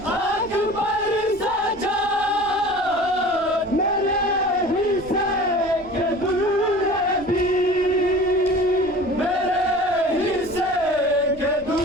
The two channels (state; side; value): noise; right; rumble, 21 dB below the sound